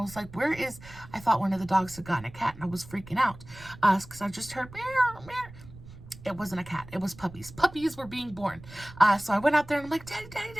like, I thought one of the dogs had gotten a cat, and I was freaking out because I just heard meow, meow. It wasn't a cat. It was puppies. Puppies were being born. So I went out there and I'm like,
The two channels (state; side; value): noise; right; rumble, 18 dB below the sound